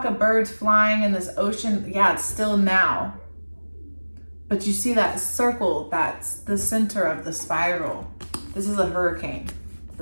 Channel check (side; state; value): both; inverted; correlation -1.00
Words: of birds flying in this ocean. Yeah, it's still now. But you see that circle, that's the center of the spiral. This is a hurricane.